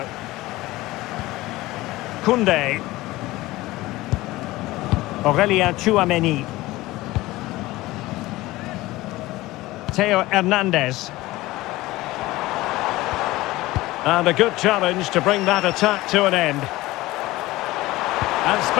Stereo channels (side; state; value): right; quieter; 18.6 dB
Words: Koundé. Aurélien Tchouameni. Theo Hernandez. And a good challenge to bring that attack to an end. And